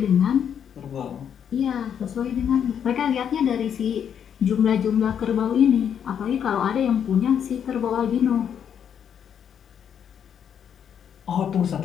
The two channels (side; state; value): right; quieter; 8.4 dB